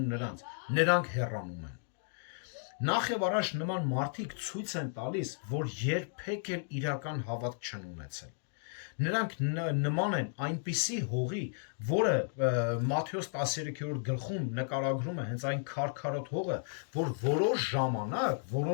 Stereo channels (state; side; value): silent; right; digital silence